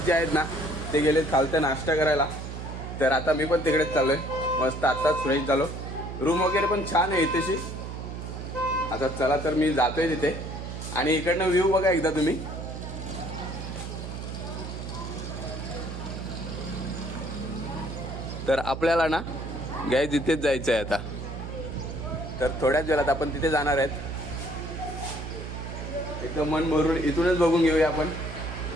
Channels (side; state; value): right; noise; hum, 7 dB below the sound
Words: जे आहेत ना ते गेले खालतं नाश्ता करायला. तर आता मी पण तिकडेच चाललोय. मस्त आत्ताच फ्रेश झालो. रूम वगैरे पण छान आहे इथेशी. आता चला तर मी जातोय तिथे. आणि इकडनं व्ह्यू बघा एकदा तुम्ही. तर आपल्याला ना गाय तिथेच जायचं आहे आता. तर थोड्याच वेळात आपण तिथे जाणार आहेत. एकदम मन भरून इथूनच बघून घेऊया आपण.